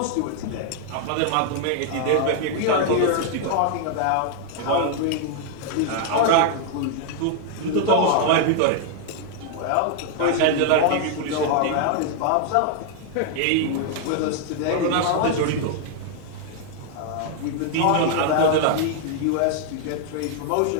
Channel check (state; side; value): different; both; correlation 0.00